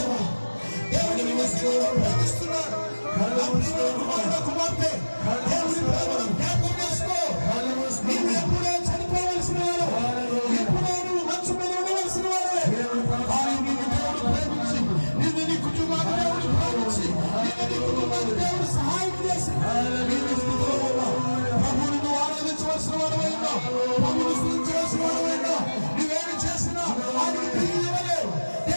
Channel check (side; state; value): both; inverted; correlation -1.00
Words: దేవుడు నీ మీద ప్రేమిస్తున్నాడు. నా ప్రియమైన కుమారుడు, కుమార్తె, దేవుని ప్రేమను జ్ఞాపకం చేసుకో. నీవు ఎప్పుడో చనిపోవలసిన వాడు, ఎప్పుడో నువ్వు మంచు మీద ఉండవలసిన వాడే. కానీ నిన్ను దేవుడు ప్రేమించి, నిన్ను నీ కుటుంబాన్ని దేవుడు ప్రేమించి, నిన్ను నీ కుటుంబాన్ని దేవుడు సహాయం చేసి నీవు స్థితిలో ఉన్నావు. ప్రభువుని నువ్వు ఆరాధించవలసిన వాడవైనా, ప్రభువుని స్తుతించవలసిన వాడవైనా, నువ్వేమి చేసినా ఆయనకి తిరిగి ఇవ్వలేవు.